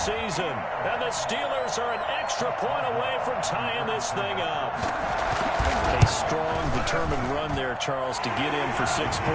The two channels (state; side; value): identical; both; correlation 1.00